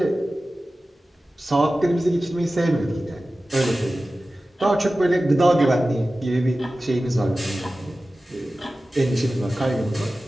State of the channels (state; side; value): normal; both; correlation 0.95